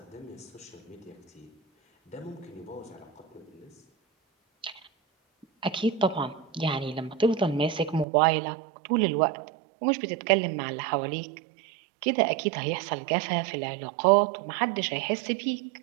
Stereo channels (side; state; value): left; drops out; at 8.1 s